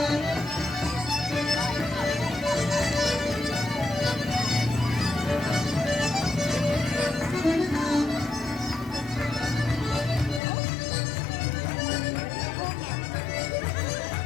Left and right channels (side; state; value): right; drops out; at 10.4 s